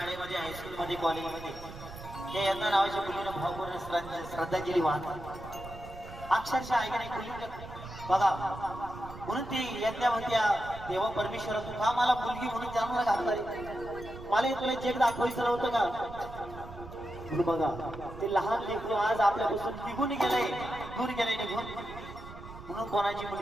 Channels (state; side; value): noise; right; rumble, 14 dB below the sound